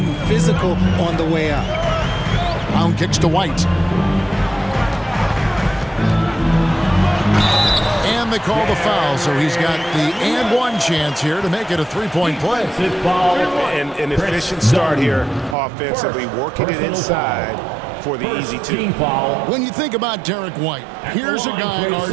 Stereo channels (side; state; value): left; drops out; at 15.6 s